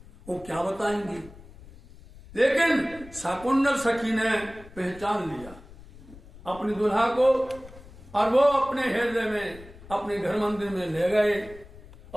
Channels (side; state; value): left; noise; rumble, 19 dB below the sound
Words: वो क्या बताएंगे। लेकिन शाकुंतल सखी ने पहचान लिया अपनी दुल्हा को और वो अपने हृदय में, अपने घर मंदिर में ले गए